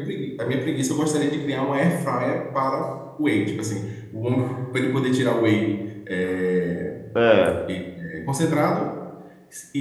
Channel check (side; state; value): both; identical; correlation 1.00